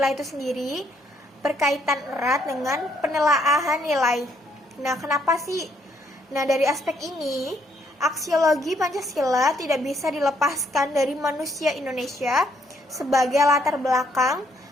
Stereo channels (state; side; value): normal; both; correlation 0.71